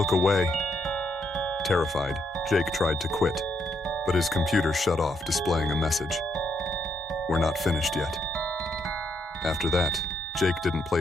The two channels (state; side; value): normal; both; correlation 0.76